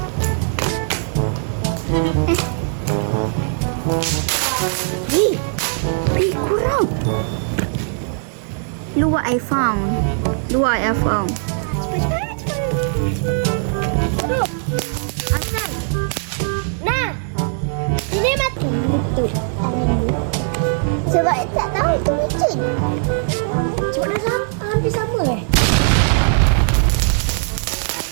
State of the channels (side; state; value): left; silent; 63 dB below the other